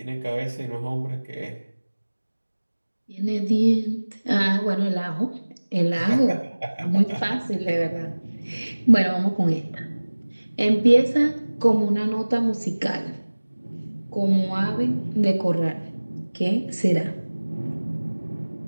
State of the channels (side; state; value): both; inverted; correlation -1.00